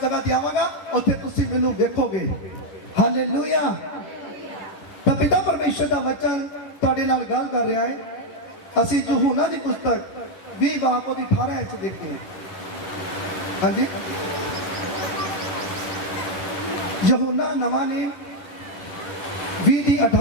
ਜਗ੍ਹਾ ਤੇ ਆਵਾਂਗਾ, ਉੱਥੇ ਤੁਸੀਂ ਮੈਨੂੰ ਵੇਖੋਗੇ। ਹਾਲੇਲੂਇਆ। ਤਾਂ ਪਿਤਾ ਪਰਮੇਸ਼ਰ ਦਾ ਵਚਨ ਤੁਹਾਡੇ ਨਾਲ ਗੱਲ ਕਰ ਰਿਹਾ ਹੈ। ਅਸੀਂ ਯਹੂਨਾ ਦੀ ਪੁਸਤਕ 20 ਬਾਬ ਉਹਦੀ 18 ਵਿੱਚ ਦੇਖਦੇ ਹਾਂ। ਹਾਂਜੀ, ਯਹੂਨਾ ਨਵਾਂ ਨੇਮ 20 ਦੀ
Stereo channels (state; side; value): late; right; 10 ms